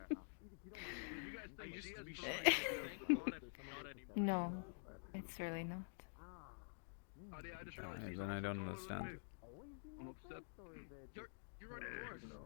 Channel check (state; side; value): silent; right; digital silence